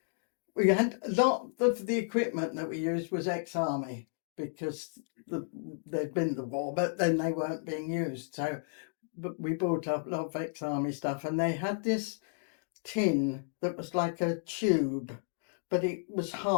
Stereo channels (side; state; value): right; silent; digital silence